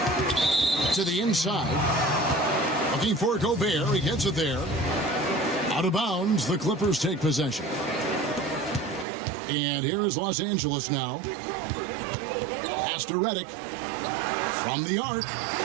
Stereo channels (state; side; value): drops out; left; at 9.1 s